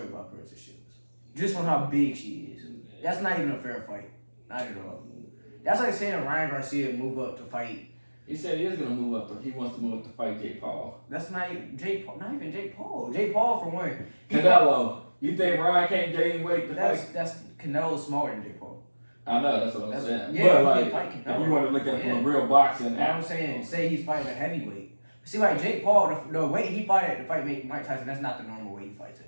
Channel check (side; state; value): both; inverted; correlation -1.00